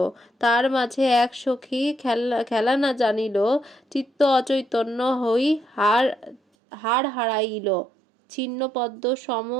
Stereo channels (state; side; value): drops out; left; at 6.4 s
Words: তার মাঝে এক সখী খেলা না জানিল, চিত্ত অচৈতন্য হই হার হারাইল। ছিন্ন পদ্ম সম